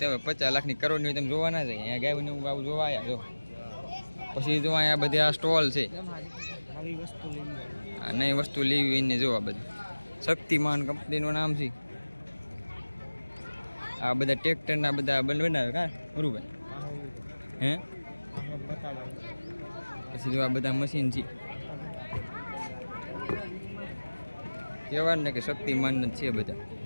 50 લાખની કરોડની હોય તમે જોવા ના જાય. અહીંયા ગાયને આવું જોવા આવ્યા જો. પછી જો અહીંયા બધી આ સ્ટોલ છે. આ નવી વસ્તુ લેવી એને જો. આ બધી શક્તિમાન કંપનીનું નામ છે. આ બધા ટ્રેક્ટરના બધા બનાવે કા મુરુભાઈ? હે પછી જો આ બધા મશીન છે. કહેવાય ને કે શક્તિમાન જ છે બધા.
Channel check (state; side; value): inverted; both; correlation -1.00